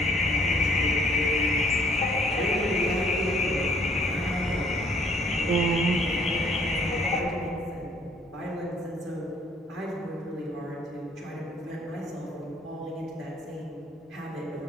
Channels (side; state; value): both; normal; correlation 0.61